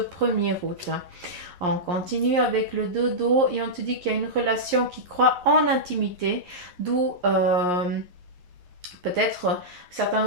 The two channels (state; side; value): late; left; 11 ms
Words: août. On continue avec le dodo et on te dit qu'il y a une relation qui croit en intimité, d'où peut-être certains